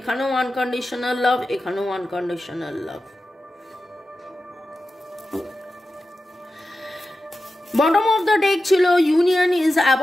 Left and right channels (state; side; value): normal; both; correlation 0.92